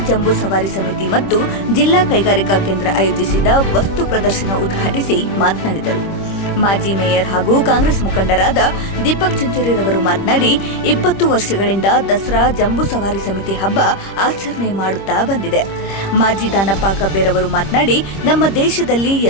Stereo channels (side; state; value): right; late; 25 ms